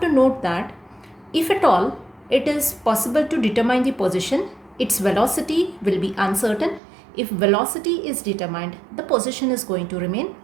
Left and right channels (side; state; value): left; drops out; at 6.8 s